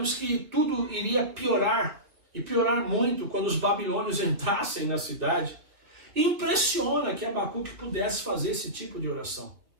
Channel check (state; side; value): late; left; 2.9 ms